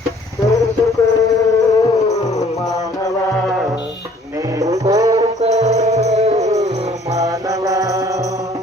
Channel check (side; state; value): both; normal; correlation 0.56